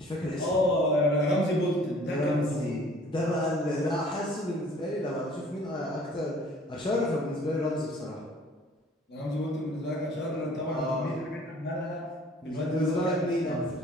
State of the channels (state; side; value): normal; both; correlation 0.53